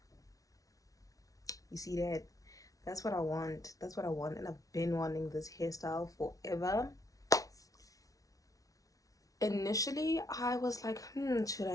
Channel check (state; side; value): late; right; 0.17 ms